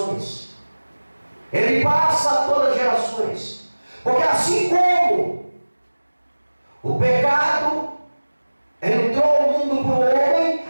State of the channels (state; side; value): inverted; both; correlation -1.00